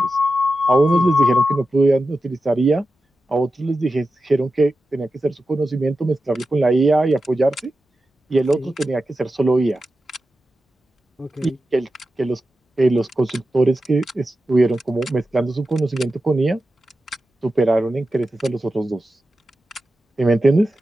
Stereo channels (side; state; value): both; normal; correlation 0.92